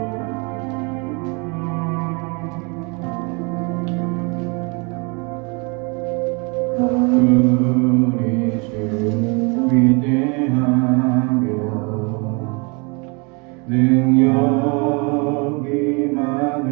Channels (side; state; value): left; quieter; 31.3 dB